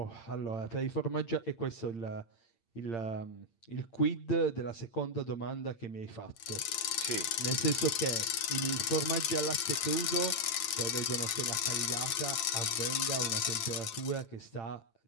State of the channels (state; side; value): late; right; 8.8 ms